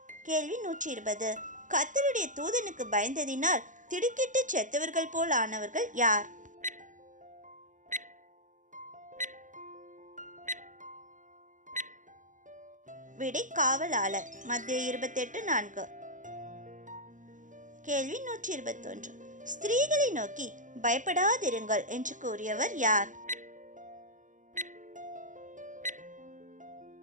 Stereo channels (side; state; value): left; late; 0.37 ms